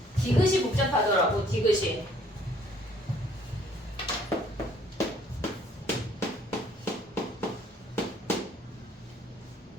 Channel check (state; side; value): normal; both; correlation 0.60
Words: 디귿이 복잡하더라고. 디귿이.